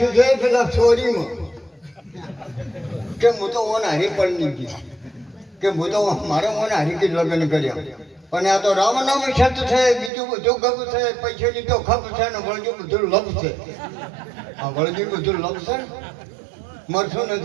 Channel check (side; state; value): left; drops out; at 10.1 s